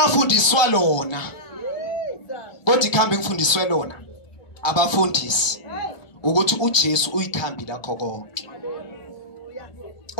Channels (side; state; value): right; late; 1.2 ms